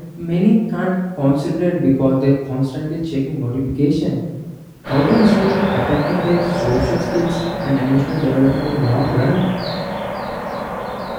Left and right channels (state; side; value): identical; both; correlation 1.00